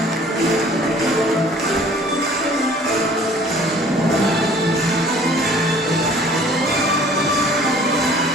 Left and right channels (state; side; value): normal; both; correlation 0.52